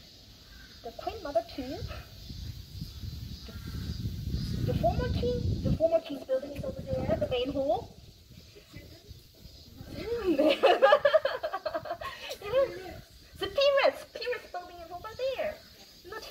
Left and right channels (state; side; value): identical; both; correlation 1.00